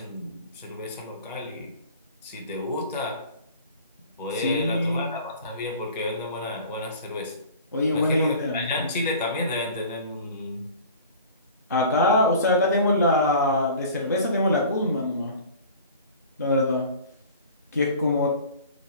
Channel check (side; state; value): both; inverted; correlation -0.43